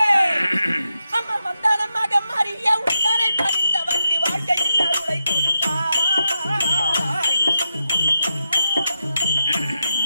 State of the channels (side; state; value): both; inverted; correlation -0.87